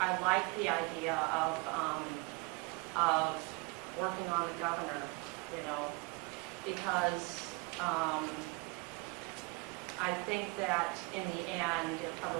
like the idea of working on the governor, you know, because I think that in the end, it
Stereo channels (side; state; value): left; quieter; 27.7 dB